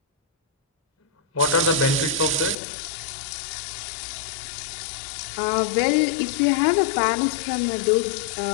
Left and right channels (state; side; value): drops out; right; at 2.6 s